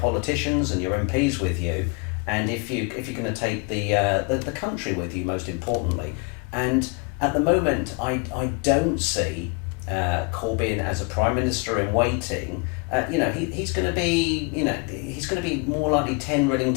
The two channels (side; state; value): right; quieter; 31.6 dB